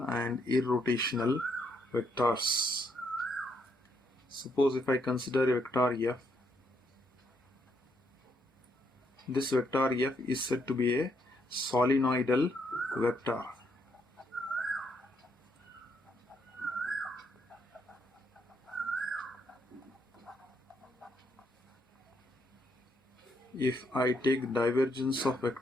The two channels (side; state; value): both; normal; correlation 0.74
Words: and irrotational vectors. Suppose if I consider a vector f, this vector f is said to be a solenoidal vector. If I take divergence of